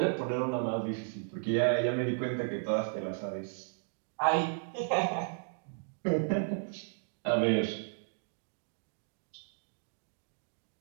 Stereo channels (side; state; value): left; silent; digital silence